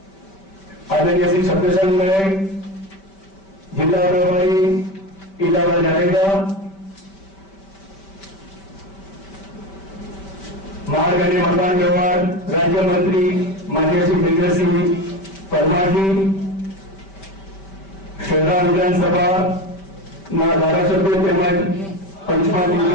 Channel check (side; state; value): right; late; 5.2 ms